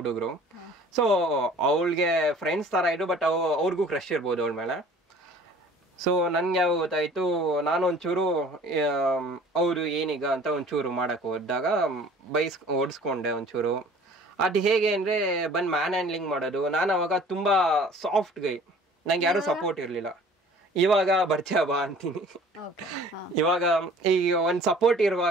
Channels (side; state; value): both; normal; correlation 0.49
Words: ಸೊ ಅವಳಿಗೆ ಫ್ರೆಂಡ್ಸ್ ತರ ಇದ್ರು, ಬಟ್ ಅವ್ರಿಗೂ ಕ್ರಶ್ ಇರ್ಬೋದು ಅವಳ ಮೇಲೆ. ಸೊ ನನ್ಗೆ ಯಾವ ಗೊತ್ತಾಯ್ತು, ನಾನು ಒಂಚೂರು ಅವರು ಏನೀಗ ಅಂತ ಒಂಚೂರು ಮಾಡಕ್ ಹೋದಾಗ ಓಡಿಸ್ಕೊಂಡೆ ಒಂಚೂರು. ಅದು ಹೇಗೆ ಅಂದ್ರೆ ಬಂದು ಮ್ಯಾನ್ ಹ್ಯಾಂಡ್ಲಿಂಗ್ ಮಾಡೋದು. ನಾನು ಅವಾಗ ತುಂಬಾ ಸಾಫ್ಟ್ ಗೈ, ನಂಗೆ ಯಾರು ಸಪೋರ್ಟ್ ಇರ್ಲಿಲ್ಲ. ಇವಾಗ ಬರ್ತೀಯ ಬಾ ಅಂತೀನಿ. ಇವಾಗ ಈಗ ಒಂದ್ ಸಪೋರ್ಟ್